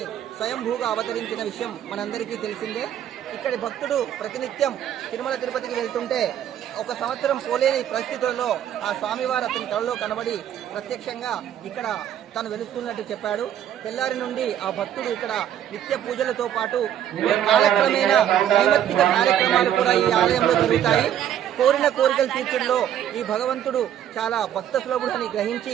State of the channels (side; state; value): left; quieter; 10.5 dB